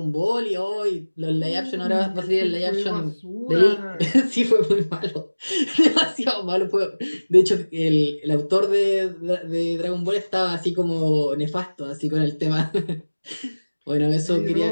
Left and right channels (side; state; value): both; inverted; correlation -1.00